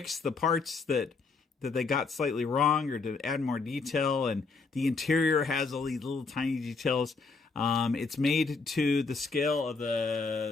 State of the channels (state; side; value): quieter; right; 4.3 dB